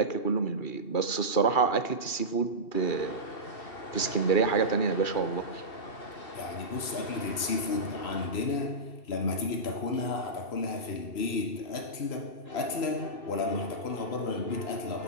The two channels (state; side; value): late; right; 2.4 ms